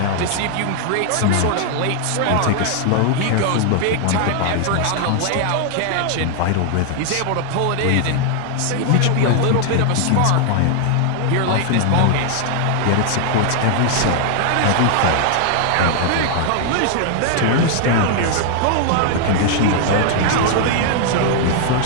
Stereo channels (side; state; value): both; different; correlation 0.00